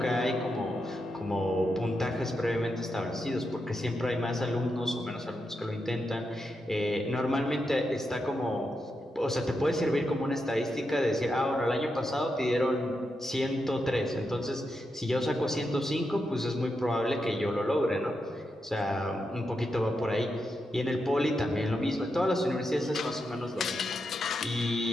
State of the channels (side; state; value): both; normal; correlation 0.86